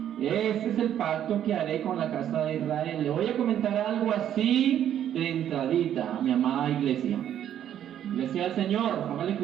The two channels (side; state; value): left; quieter; 10.4 dB